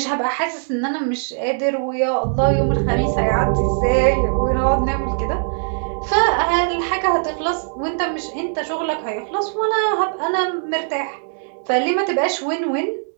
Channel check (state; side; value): silent; left; digital silence